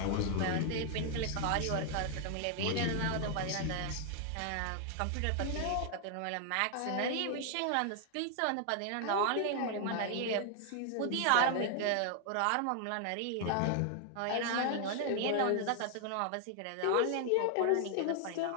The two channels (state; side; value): different; both; correlation 0.00